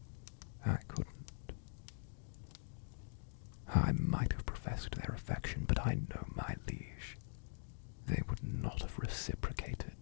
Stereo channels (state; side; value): silent; right; digital silence